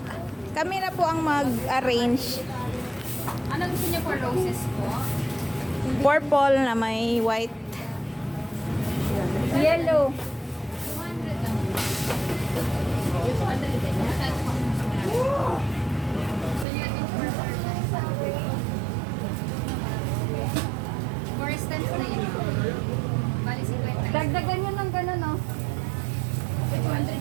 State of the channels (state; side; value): drops out; left; at 16.7 s